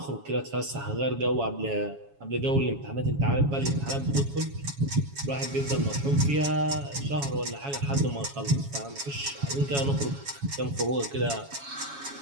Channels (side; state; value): left; late; 7.2 ms